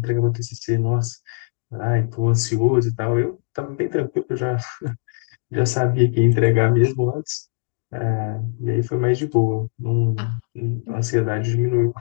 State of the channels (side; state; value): right; silent; digital silence